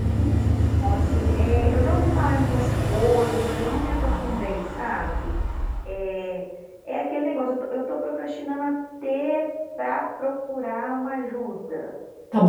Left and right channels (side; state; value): both; identical; correlation 1.00